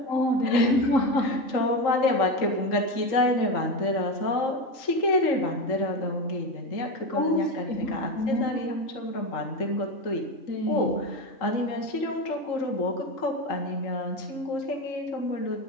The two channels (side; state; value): right; late; 3.7 ms